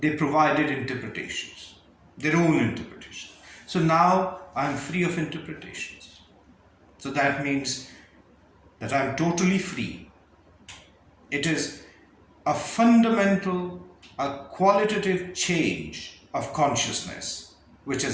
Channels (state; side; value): identical; both; correlation 1.00